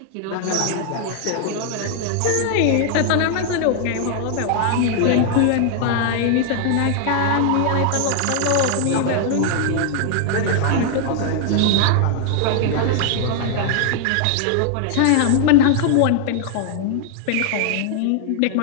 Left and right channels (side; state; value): both; different; correlation 0.00